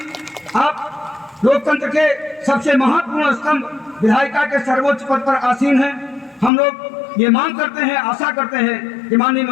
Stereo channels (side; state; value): right; drops out; at 6.5 s